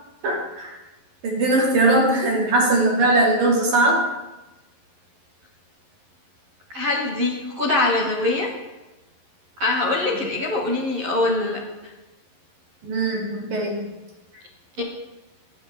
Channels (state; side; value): late; left; 11 ms